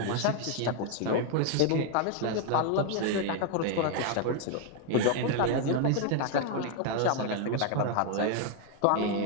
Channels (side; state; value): both; different; correlation 0.01